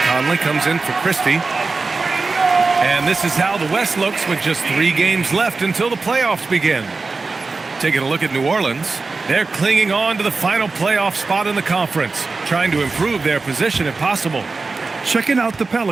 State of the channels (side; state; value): left; quieter; 4.0 dB